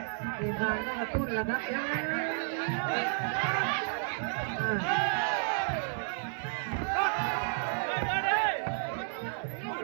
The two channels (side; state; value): left; silent; digital silence